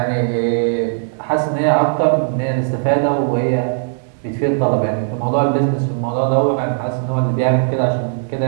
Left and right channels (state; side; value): silent; left; digital silence